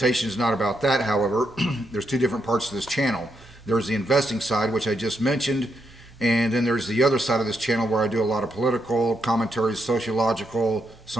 is not about that, however. There's two different parts to this channel. There's the investing side, which I just mentioned, and then there's the other side of this channel where I do a lot of political commentaries, sociological,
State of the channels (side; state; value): both; normal; correlation 0.80